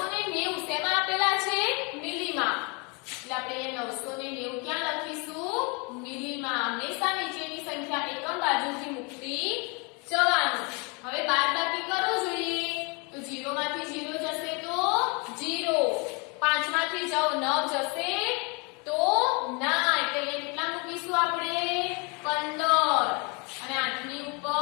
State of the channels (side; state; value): right; quieter; 31.5 dB